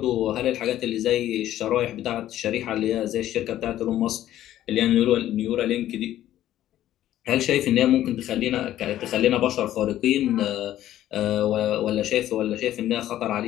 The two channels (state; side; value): quieter; right; 12.9 dB